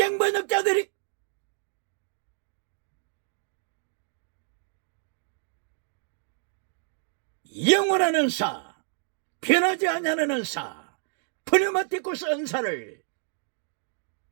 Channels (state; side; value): silent; left; digital silence